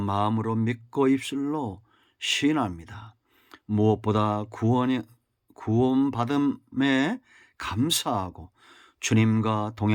믿고 입술로 시인합니다. 무엇보다 구원받음에 감사하고 주님과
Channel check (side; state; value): both; identical; correlation 1.00